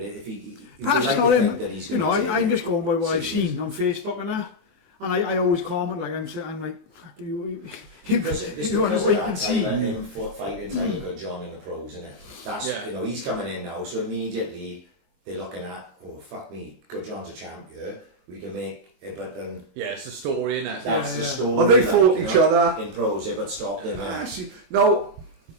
if he Perhaps would like not to him. think that he's You going know, to I'm just going by what I've serious. seen on Facebook and that. And I always comment, like, I'm like, fuck you. Because it's You want because to of wait that, and see. like, him fighting like a good John in the pros, isn't it? That's, Yeah. you know, he's coming in now, so immediately they're looking at, oh, fuck me, good John's a champ here, we can make it, but then Yeah, it's the story, innit? that's the story. Well, they like, fought you each know, other. in pros, but stopped him. Actually, no.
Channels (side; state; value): left; late; 22 ms